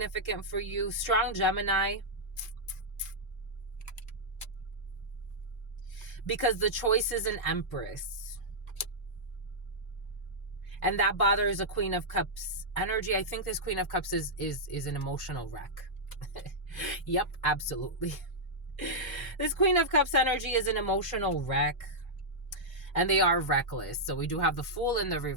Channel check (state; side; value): normal; both; correlation -0.09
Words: for you. Strong Gemini. Because the choice is an Empress. And that bothers a Queen of Cups energy. I think this Queen of Cups is an emotional wreck. Yep, absolutely. This Queen of Cups energy is an emotional wreck. And they are reckless. So we do have the Fool in the